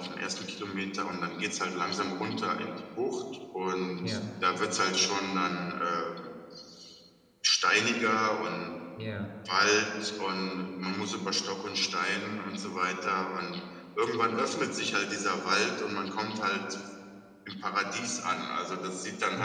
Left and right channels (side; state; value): both; identical; correlation 1.00